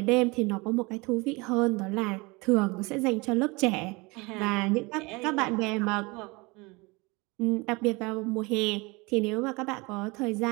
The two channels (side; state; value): left; quieter; 25.5 dB